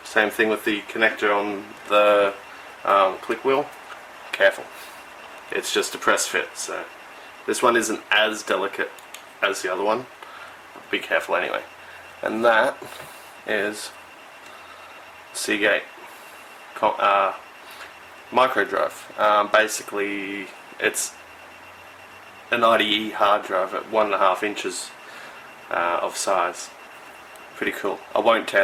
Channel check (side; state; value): both; identical; correlation 1.00